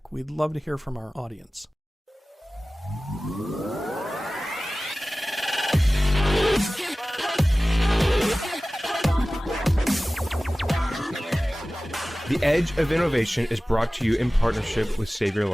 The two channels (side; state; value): both; normal; correlation 0.97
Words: We'd love to hear from our audience. The Edge of Innovation is brought to you in partnership with Savior